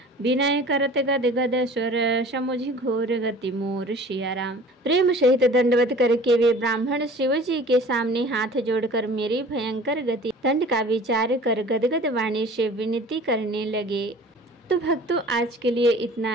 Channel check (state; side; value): normal; both; correlation 0.45